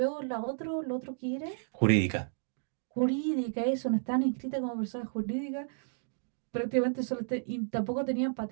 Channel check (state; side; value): silent; left; digital silence